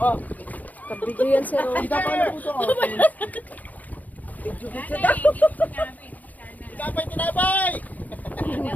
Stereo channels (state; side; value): late; right; 0.079 ms